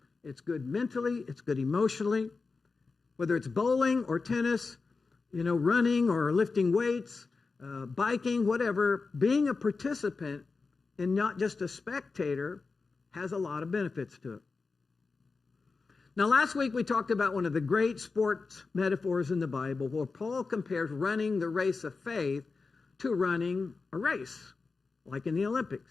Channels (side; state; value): right; quieter; 4.3 dB